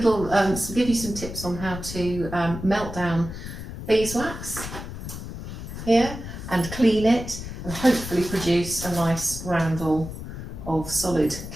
give you some tips on how to melt down beeswax here and clean it and hopefully produce a nice roundel of solid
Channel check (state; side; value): noise; left; rumble, 9 dB below the sound